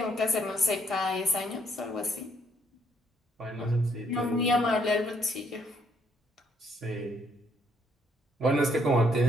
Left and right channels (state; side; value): normal; both; correlation 0.68